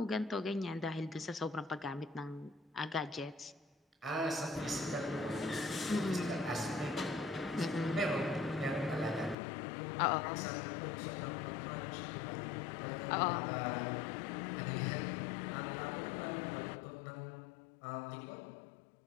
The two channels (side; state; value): right; drops out; at 9.3 s